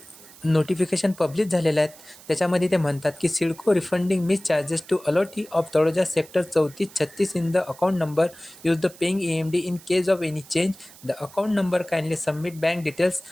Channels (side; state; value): right; noise; hiss, 21 dB below the sound